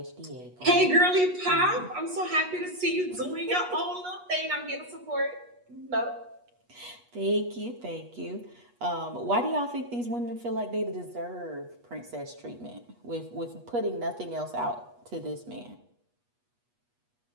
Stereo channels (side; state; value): left; late; 8.3 ms